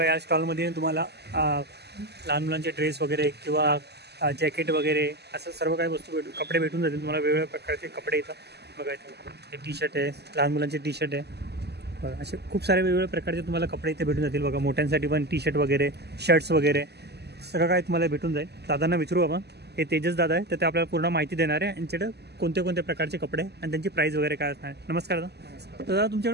या स्टॉलमध्ये तुम्हाला लहान मुलांचे ड्रेस वगैरे किंवा जॅकेट वगैरे असं सर्व काही वस्तू कपडे भेटून जातील तुम्हाला. वेगवेगळ्या प्रकारचे कपडे इथं बघा, इथे हे टी शर्ट आहे, लहान मुलांचे टी शर्ट आहे. बघा असे खूप सारे वेगवेगळ्या प्रकारचे तुम्हाला कपडे इथे भेटून जातील. बघा मोठ्यांसाठी पण टी शर्ट वगैरे, शर्ट्स वगैरे सगळं काय तुम्हाला भेटून जाईल. दादांना विचारू आपण, हे तेजस दादा आहे, तर ते आपल्याला पूर्ण माहिती देणार आहे यांच्याकडे कोणते कोणते प्रकारचे कपडे आणि त्यांची प्राईस वगैरे काय असणार. नमस्कार दादा. दादा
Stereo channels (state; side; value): late; left; 0.48 ms